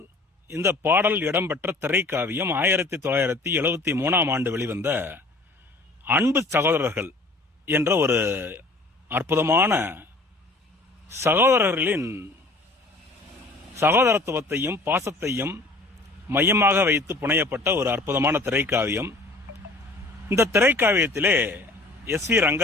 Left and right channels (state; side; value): quieter; right; 3.2 dB